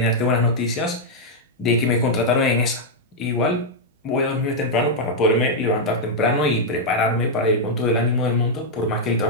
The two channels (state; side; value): normal; both; correlation -0.03